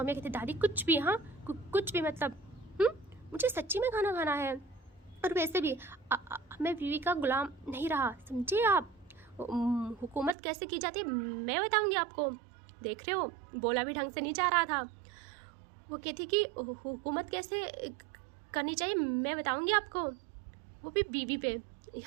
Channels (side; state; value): left; drops out; at 10.4 s